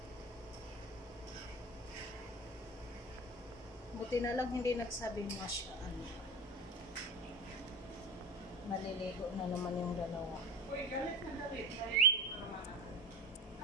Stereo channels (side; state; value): both; normal; correlation 0.27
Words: Buti na lang hindi nagsabi masya Allah. Maliligo na naman yung dalawa. Uy, galit na galit.